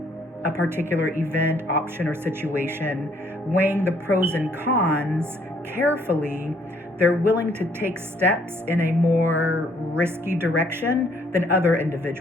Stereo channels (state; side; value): normal; both; correlation 0.65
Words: a particular event, option, or situation, weighing the pros and cons carefully, they're willing to take steps in a more risky direction than other